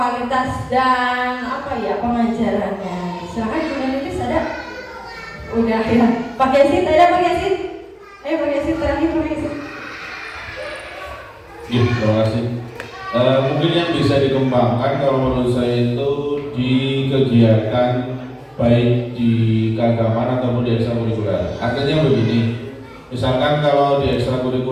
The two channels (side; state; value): both; identical; correlation 1.00